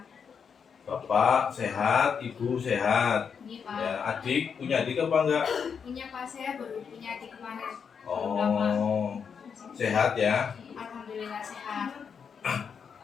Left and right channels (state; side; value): quieter; right; 6.6 dB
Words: Bapak sehat, Ibu sehat. Ini Pak. Ya, adik punya adik apa enggak? Punya Pak, saya baru punya adik kemarin. Belum lama. Oh, sehat ya. Alhamdulillah sehat.